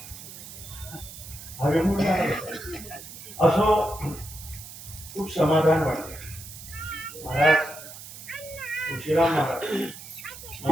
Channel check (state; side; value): noise; right; hiss, 14 dB below the sound